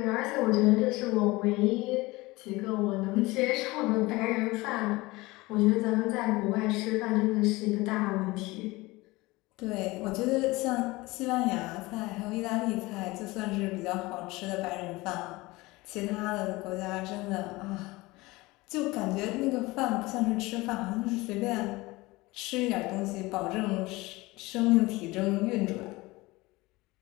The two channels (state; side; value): quieter; right; 21.5 dB